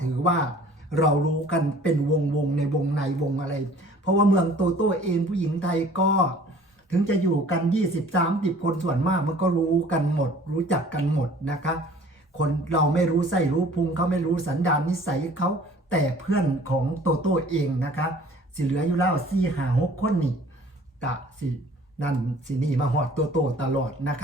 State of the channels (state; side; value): normal; both; correlation 0.51